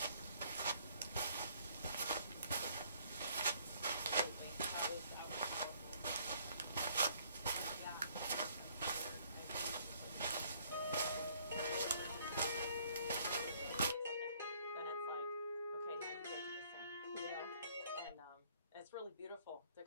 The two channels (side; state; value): both; inverted; correlation -0.62